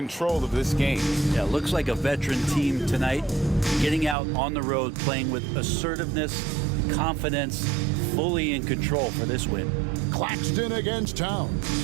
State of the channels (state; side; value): drops out; left; at 4.2 s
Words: of this game. Yeah, looks like a veteran team tonight. Getting out on the road, playing with assertiveness, confidence, fully in control for this win. Claxton against Towns.